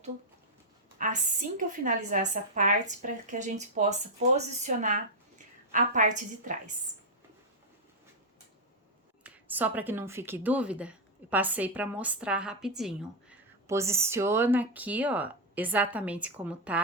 assim que eu finalizar essa parte para que a gente possa posicionar a parte de trás. Só para que não fique dúvida, eu passei para mostrar rapidinho. Posiciona aqui, ó, exatamente como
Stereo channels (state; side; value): normal; both; correlation -0.01